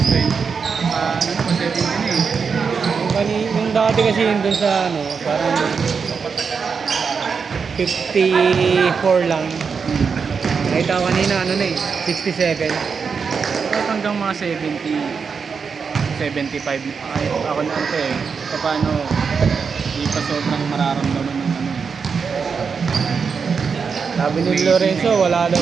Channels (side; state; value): left; quieter; 5.7 dB